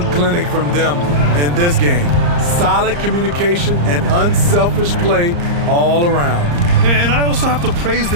clinic from them in this game. Solid communication and unselfish play all around. And I also have to praise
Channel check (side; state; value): left; late; 34 ms